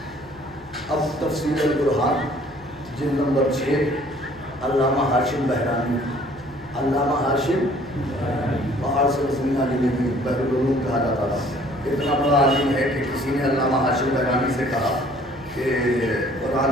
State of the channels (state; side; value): normal; both; correlation 0.56